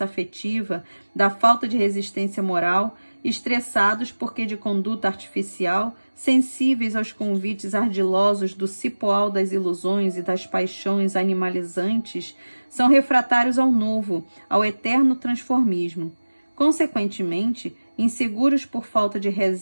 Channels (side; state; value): both; inverted; correlation -1.00